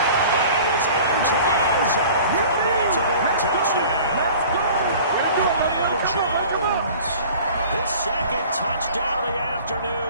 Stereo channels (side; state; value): both; inverted; correlation -0.45